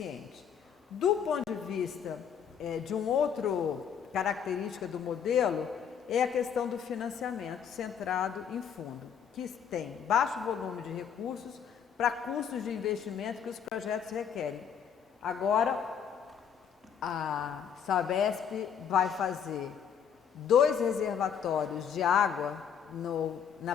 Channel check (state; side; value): quieter; right; 7.8 dB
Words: Do ponto de vista de um outro característica do modelo, é a questão do financiamento centrado em fundo, que tem baixo volume de recursos para custos de investimento que os projetos requerem. Agora, a Sabesp vai fazer 2 reservatórios de água na